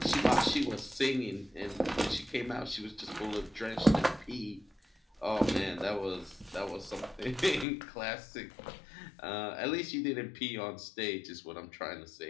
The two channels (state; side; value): drops out; right; at 7.7 s